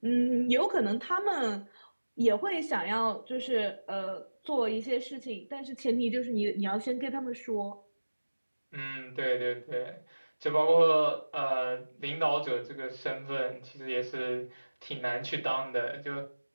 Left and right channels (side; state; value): both; inverted; correlation -1.00